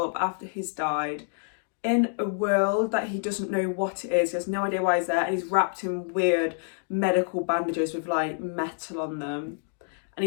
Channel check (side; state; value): right; silent; digital silence